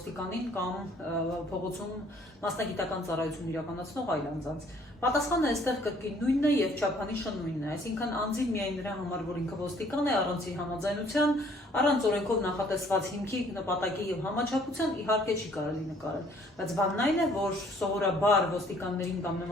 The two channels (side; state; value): both; normal; correlation 0.60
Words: կամ փողոցում մասնագիտական ծառայություն իրականացնող այլ անձանց։ Պատասխանը այստեղ կրկին նույնն է եւ չափանիշը նույնն է, այսինքն անձին միայն նրա համար, որ ինքը ոստիկան է, առանց իր համաձայնության, առանց օրենքով նախատեսված հիմքի, նպատակի եւ համաչափության իհարկե չի կարելի նկարել։ Բայց բանն այն է, որ սովորաբար ոստիկաններին կամ